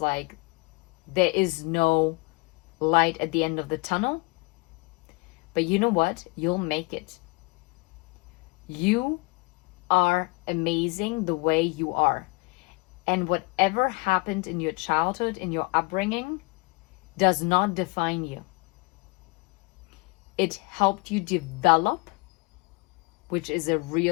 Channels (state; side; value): quieter; right; 26.9 dB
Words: there is no light at the end of the tunnel. But you know what? You'll make it. You are amazing the way you are. And whatever happened in your childhood, in your upbringing, does not define you. It helped you develop, which is a